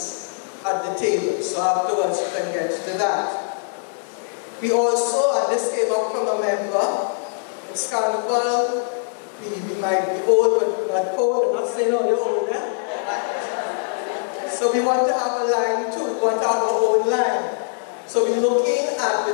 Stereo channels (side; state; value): right; silent; digital silence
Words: at the table. So afterwards, you can get to that. We also, and this came up from a member, it's Carnival. We might be old, but we're not cold. I'm not saying all you're older, right? So we want to have a line too. We want to have our own line. So we're looking at